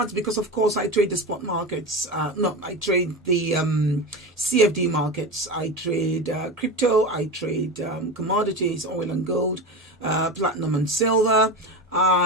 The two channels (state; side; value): normal; both; correlation 0.23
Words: because, of course, I trade the spot markets. I trade the CFD markets. I trade crypto. I trade commodities, oil and gold, platinum and silver.